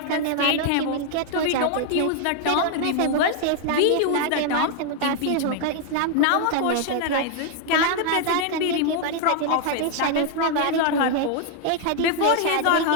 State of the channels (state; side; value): different; both; correlation 0.00